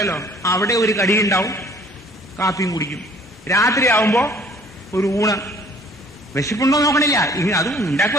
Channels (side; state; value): both; normal; correlation 0.55